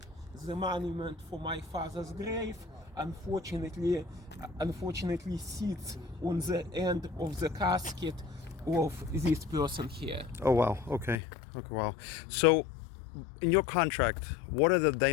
the monument for my father's grave unfortunately sits on the end of the casket of this person here. Oh wow, okay, wow. So in your contract, what are the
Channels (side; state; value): right; drops out; at 11.2 s